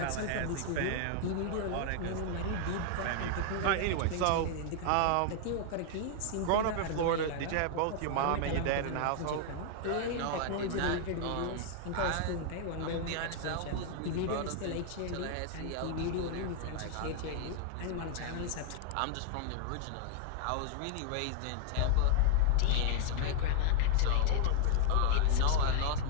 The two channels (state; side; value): different; both; correlation 0.00